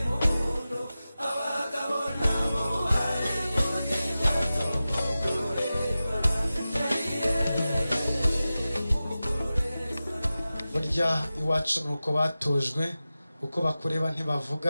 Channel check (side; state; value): both; inverted; correlation -0.95